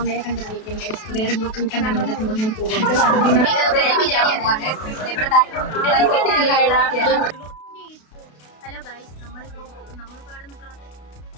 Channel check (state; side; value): late; right; 32 ms